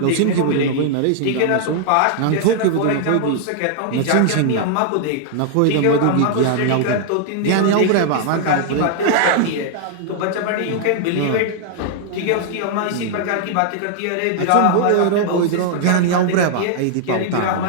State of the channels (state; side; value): different; both; correlation -0.01